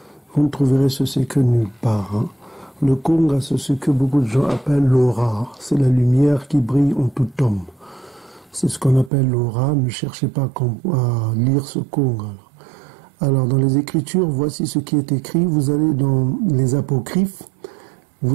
vous ne trouverez ce secret nulle part. Hein. Le Konga, c'est ce que beaucoup de gens appellent l'aura. C'est la lumière qui brille en tout homme. C'est ce qu'on appelle l'aura. Ne cherchez pas à lire ce Konga. Alors, dans les Écritures, voici ce qui est écrit. Vous allez dans les Apocryphes.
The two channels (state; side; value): drops out; left; at 9.1 s